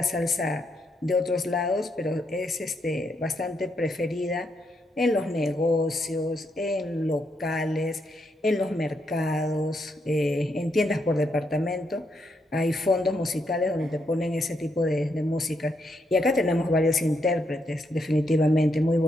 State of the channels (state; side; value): normal; both; correlation 0.79